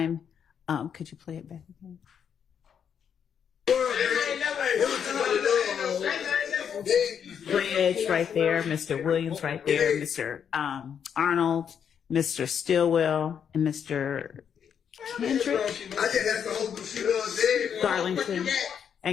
Could you play it back again? Bridge right there, Mr. Williams right there, Mr. Arnold, Mr. Stillwell, and Mr. Kendrick, I just have to hold the shit on dead. Garlington,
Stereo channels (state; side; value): quieter; right; 7.9 dB